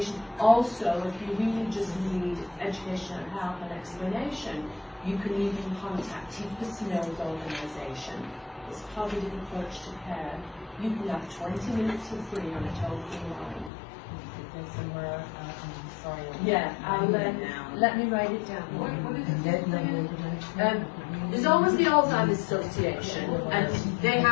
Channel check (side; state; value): right; drops out; at 13.7 s